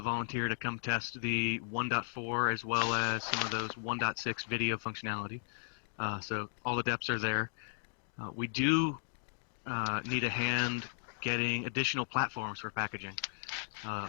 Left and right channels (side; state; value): right; silent; digital silence